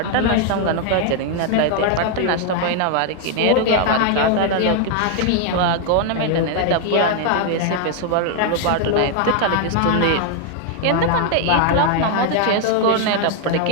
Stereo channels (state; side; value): different; both; correlation 0.00